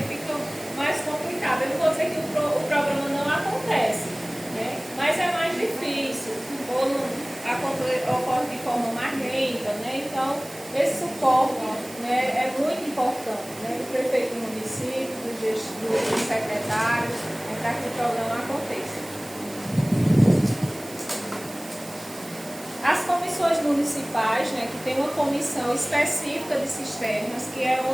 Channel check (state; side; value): noise; right; hiss, 17 dB below the sound